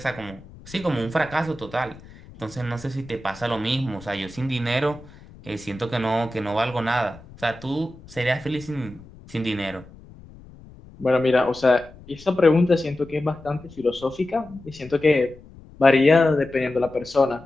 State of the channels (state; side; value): noise; left; rumble, 21 dB below the sound